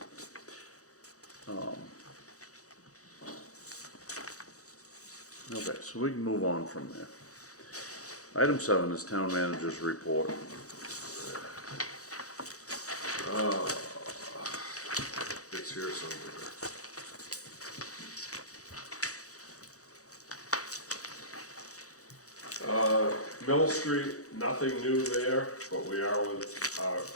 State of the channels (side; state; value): right; late; 0.66 ms